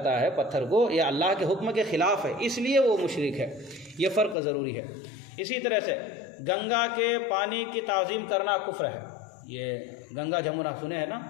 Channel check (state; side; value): drops out; right; at 4.4 s